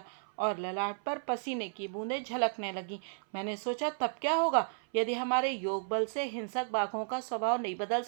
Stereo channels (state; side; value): silent; left; 55 dB below the other